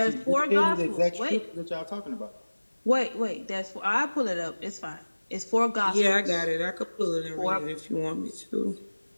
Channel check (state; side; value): inverted; both; correlation -1.00